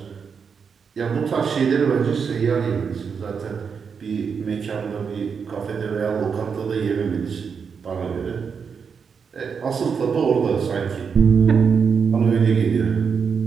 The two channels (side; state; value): left; quieter; 6.2 dB